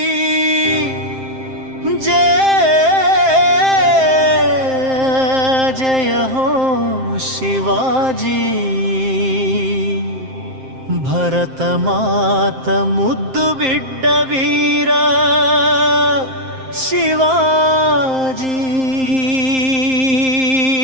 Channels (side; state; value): left; late; 7.6 ms